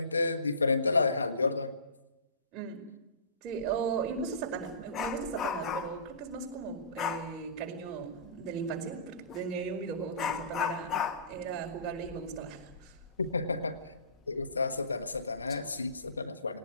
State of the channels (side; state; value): both; inverted; correlation -0.38